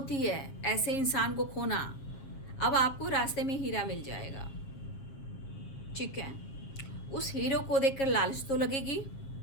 है ऐसे इंसान को खोना। अब आपको रास्ते में हीरा मिल जाएगा, ठीक है, उस हीरो को देखकर लालच तो लगेगी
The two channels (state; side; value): late; right; 7.4 ms